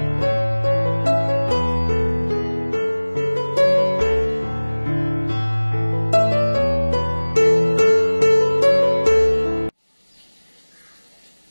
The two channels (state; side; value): inverted; both; correlation -1.00